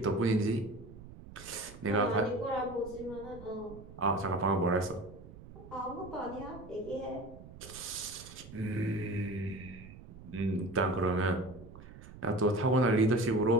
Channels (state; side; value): noise; right; rumble, 17 dB below the sound